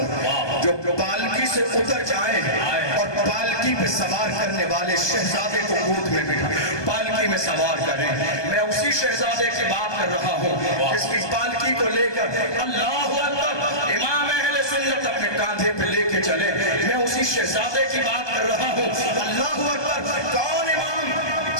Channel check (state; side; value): late; right; 1.2 ms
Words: جو پالکی سے اتر جائے اور پالکی پہ سوار کرنے والے شہزادے کو گود میں بٹھا پالکی میں سوار کریں. میں اسی شہزادے کی بات کر رہا ہوں جس کی پالکی کو لے کر اللہ اکبر امام اہل سنت اپنے کاندھے پہ لے کے چلے. میں اسی شہزادے کی بات کر رہا ہوں. اللہ اکبر. کون امام؟